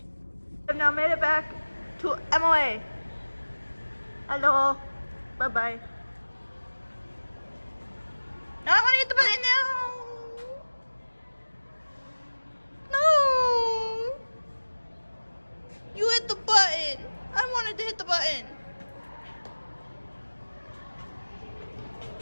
I've now made it back to MOA. Hello. Bye-bye. Now I want to hit the button now. No. You hit the button. I wanted to hit the button.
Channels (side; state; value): both; inverted; correlation -1.00